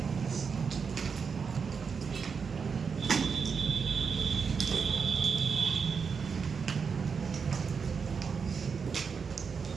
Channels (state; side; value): quieter; left; 5.8 dB